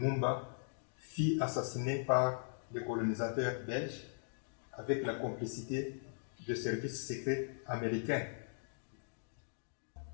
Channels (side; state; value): right; silent; digital silence